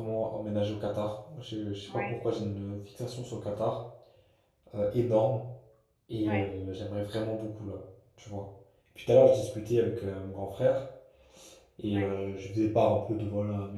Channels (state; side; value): identical; both; correlation 1.00